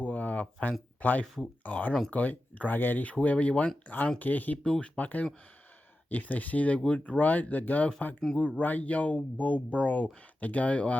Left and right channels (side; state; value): both; normal; correlation 0.92